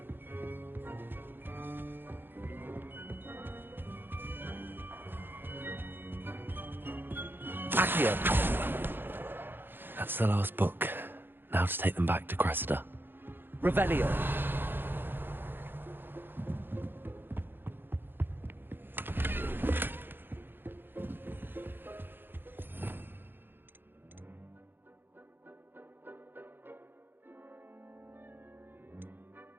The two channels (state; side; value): late; left; 0.099 ms